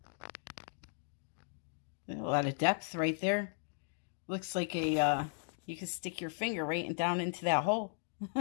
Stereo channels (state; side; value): silent; right; 53 dB below the other